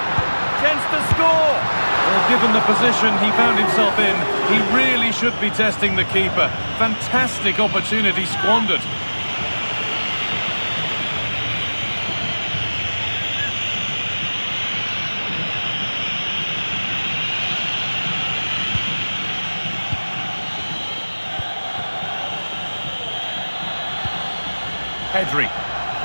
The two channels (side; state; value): both; inverted; correlation -1.00